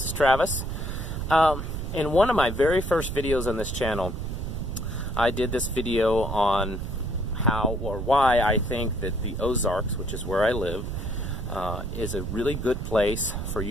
is Travis. In one of my very first videos on this channel, I did this video on how or why I think that the Ozarks, which is where I live, is a really good place for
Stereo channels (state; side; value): noise; right; rumble, 4 dB below the sound